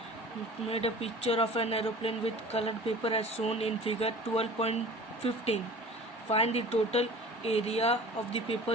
picture of an aeroplane with colored paper as shown in figure 12.15. Find the total area of the paper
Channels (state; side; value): normal; both; correlation 0.42